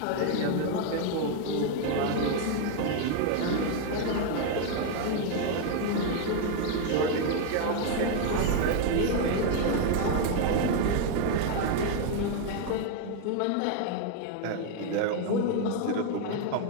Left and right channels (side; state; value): both; different; correlation 0.01